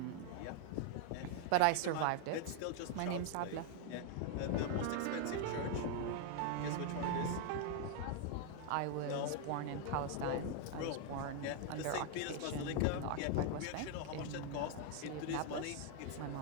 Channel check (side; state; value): both; different; correlation 0.00